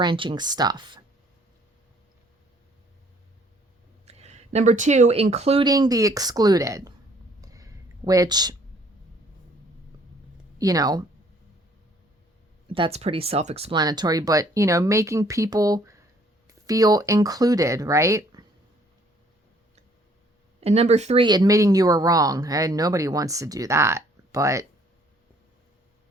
stuff. Number 2, including the excluded, which, you know, that's pretty self-explanatory, but, you know, making people feel included, right? And number 3, admitting you were wrong. And nobody wants to do that, but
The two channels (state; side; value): normal; both; correlation 0.61